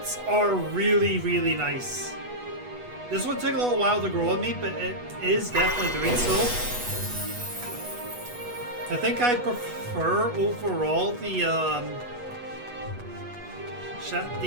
are really, really nice. This one took a little while to grow on me, but it is definitely doing so. I think I prefer overall the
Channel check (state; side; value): late; left; 8.2 ms